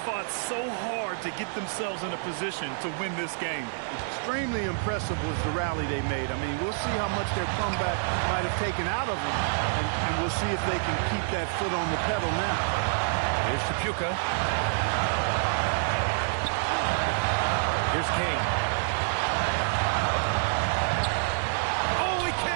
fought so hard to get themselves in a position to win this game. Extremely impressive was the rally they made. I mean, we'll see how much their comeback might have taken out of them, and we'll see if they can keep that foot on the pedal now. Here's Chapuka. Here's King. Oh, he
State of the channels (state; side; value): silent; left; 60 dB below the other